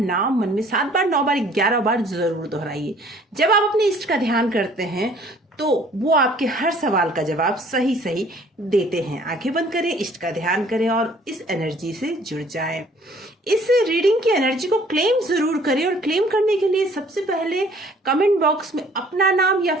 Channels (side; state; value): both; normal; correlation 0.56